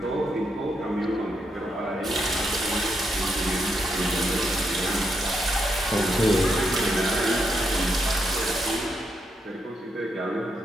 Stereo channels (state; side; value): normal; both; correlation 0.80